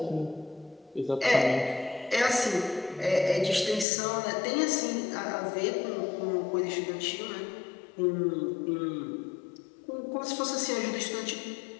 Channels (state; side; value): drops out; right; at 3.9 s